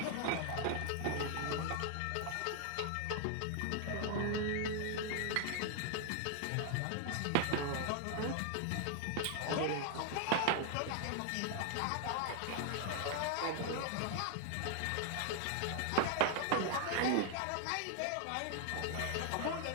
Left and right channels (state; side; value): different; both; correlation 0.00